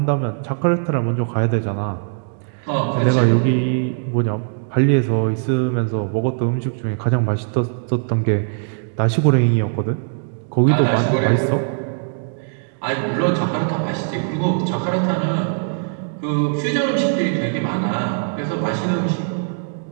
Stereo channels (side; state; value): left; silent; digital silence